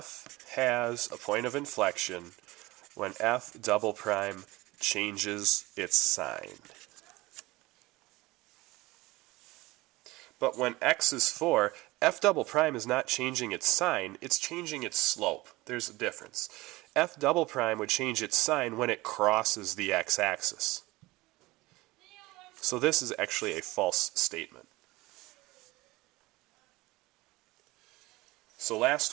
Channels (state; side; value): quieter; left; 20.5 dB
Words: has a point of inflection when f double prime changes its sign. But when x is 4, f double prime is not changing its sign, it's changing its slope. There's a difference. F double prime would change its sign when it crosses the x-axis. So this is actually a false statement. So last